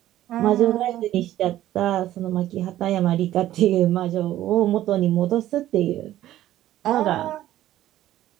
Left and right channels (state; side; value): quieter; left; 13.6 dB